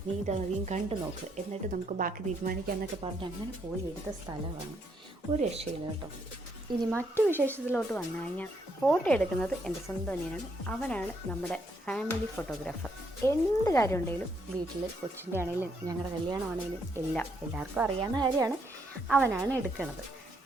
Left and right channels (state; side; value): normal; both; correlation 0.74